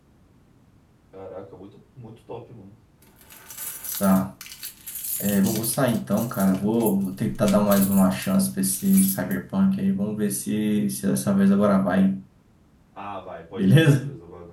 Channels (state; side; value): identical; both; correlation 1.00